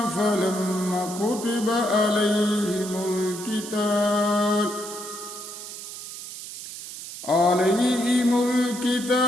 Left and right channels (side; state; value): right; noise; hiss, 11 dB below the sound